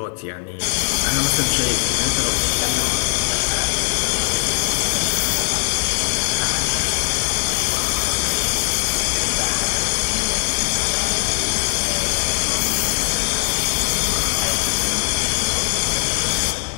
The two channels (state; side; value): silent; right; 64 dB below the other